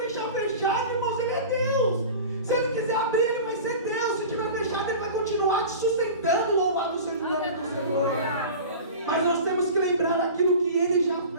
fechado, irmãos, Ele é Deus. Se Ele quiser abrir, Ele vai ser Deus. Se estiver fechado, Ele vai continuar te sustentando. Louvado seja o nome do Senhor. Mas nós temos que lembrar daquilo que Ele já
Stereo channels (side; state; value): both; inverted; correlation -0.36